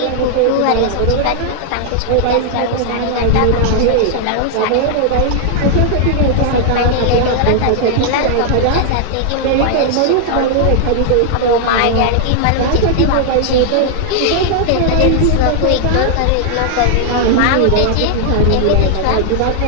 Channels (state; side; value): different; both; correlation 0.00